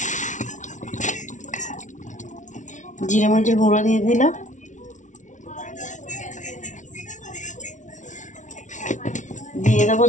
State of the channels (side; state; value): right; late; 0.36 ms